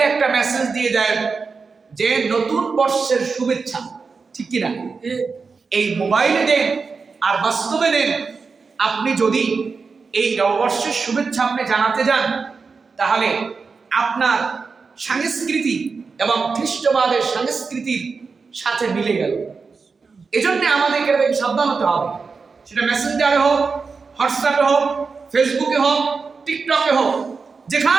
একটা মেসেজ দিয়ে দেয় যে নতুন বর্ষের শুভেচ্ছা, ঠিক কিনা? এই মোবাইলে দেন আর বাস্তবে দেন। আপনি যদি এই নববর্ষের শুভেচ্ছা আপনি জানাতে যান, তাহলে আপনার সংস্কৃতি এবং খ্রিস্টবাদের সংস্কৃতির সাথে মিলে গেল। এজন্য আমাদেরকে এটাকে সাবধান হতে হবে। সেটা মেসেঞ্জারে হোক, হোয়াটসঅ্যাপে হোক, ফেসবুকে হোক, টিকটকে হোক,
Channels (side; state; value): left; quieter; 4.8 dB